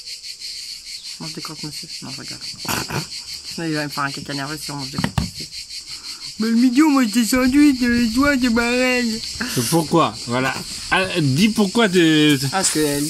Je mange des croque-monsieur. Non, je regarde. Sinon, il va me faire un caca nerveux si on mange des croque-monsieur. Mais le midi, on mange des sandwichs, toi, c'est pareil. Pourquoi? Voilà. Ah, dis pourquoi de. Parce que le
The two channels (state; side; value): identical; both; correlation 1.00